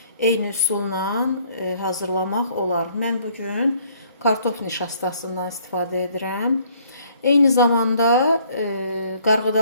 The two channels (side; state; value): both; inverted; correlation -0.62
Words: eyni üsulla hazırlamaq olar. Mən bugün kartof nişastasından istifadə edirəm. Eyni zamanda